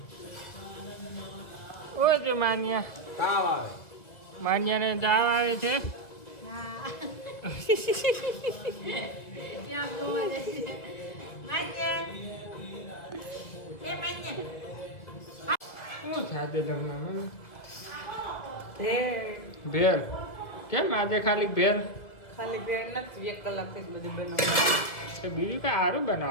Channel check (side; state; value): right; late; 1.7 ms